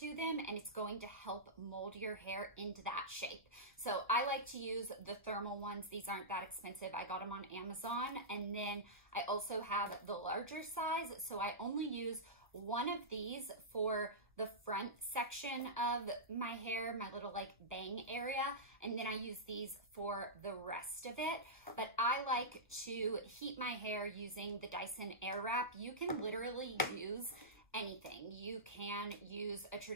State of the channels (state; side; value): normal; both; correlation -0.14